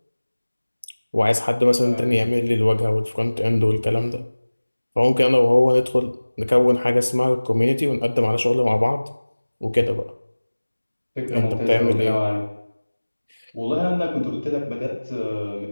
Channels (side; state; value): both; inverted; correlation -1.00